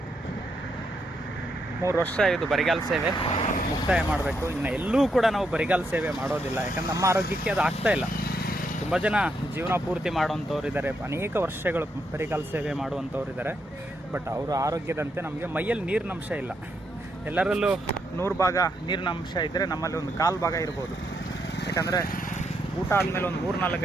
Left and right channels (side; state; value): both; normal; correlation 0.79